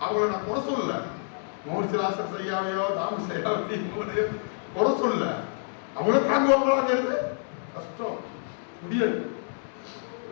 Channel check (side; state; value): right; silent; digital silence